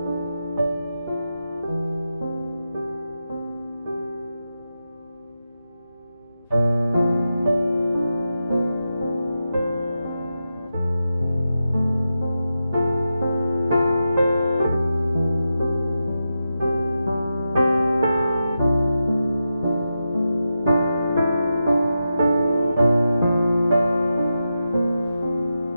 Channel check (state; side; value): inverted; both; correlation -0.89